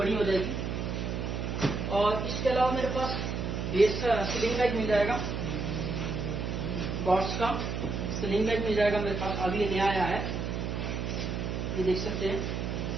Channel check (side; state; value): right; noise; hum, 3 dB below the sound